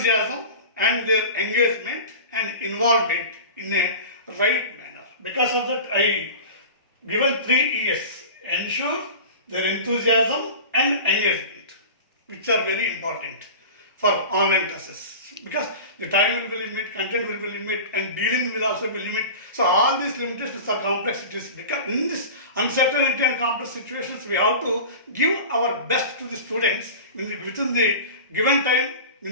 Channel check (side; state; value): both; inverted; correlation -0.34